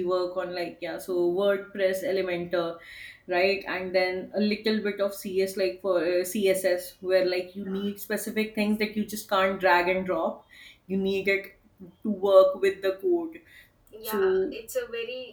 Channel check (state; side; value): identical; both; correlation 1.00